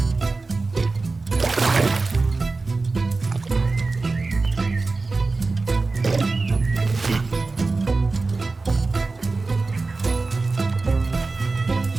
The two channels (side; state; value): left; quieter; 3.7 dB